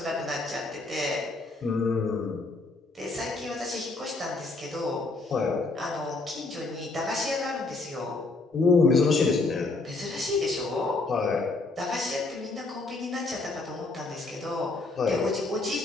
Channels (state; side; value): quieter; right; 3.4 dB